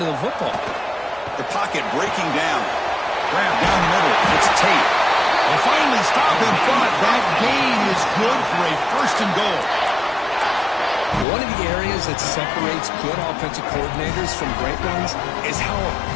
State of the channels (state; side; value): drops out; right; at 11.2 s